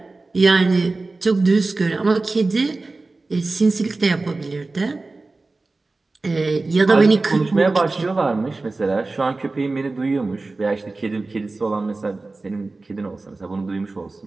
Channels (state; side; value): quieter; left; 3.4 dB